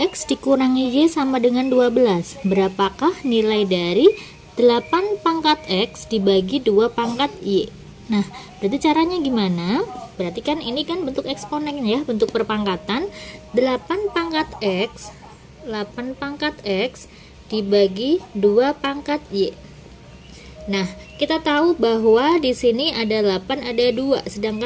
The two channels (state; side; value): identical; both; correlation 1.00